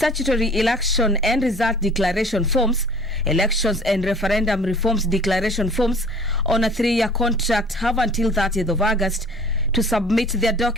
election and result declaration forms, elections and referendum reforms declaration forms on a 3-year contract have until 30th of August to submit their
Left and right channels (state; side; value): normal; both; correlation 0.49